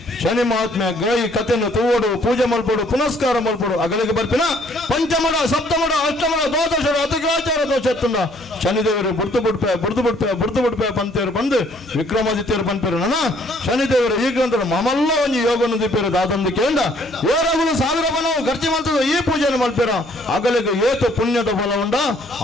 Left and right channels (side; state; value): both; normal; correlation 0.62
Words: ಶನಿ ಮಹಾತ್ಮೆ ಗಾಯಿ ಕಥೆಯನ್ನು ತೂವಡು ಪೂಜೆ ಮಲ್ಪಡು ಪುನಸ್ಕಾರ ಮಲ್ಪಡು ಅಗಳಿಗೆ ಬರ್ಪಿನ ಪಂಚಮಡ ಸಪ್ತಮಡ ಅಷ್ಟಮಡ ದ್ವಾದಶರ ಅತಿಗ್ರಾಚಾರ ದೋಷ ಎತ್ತುಂಡ ಶನಿದೇವರು ಬುಡ್ದು ಬಿಡ್ಪೆ ಪಂತೇರು ಬಂದು ವಿಕ್ರಮಾದಿತ್ಯರು ಬಂದ್ಪೇರು ನನ್ನ ಶನಿದೇವರು ಈ ಗ್ರಂಥದ ಮಮಲ್ಲ ಒಂದು ಯೋಗನು ದಿಪ್ಪೇರು ದಾದಂದು ಕೇಂದ್ರ ಏರಗುಲು 1000 ಬನವು ಖರ್ಚು ಮಾಡ್ತದ ಈ ಪೂಜೆಯನ್ನು ಮಲ್ಪೇರ ಅಗಲಿಗೆ ಏತು ಪುಣ್ಯದ ಫಲ ಉಂಡ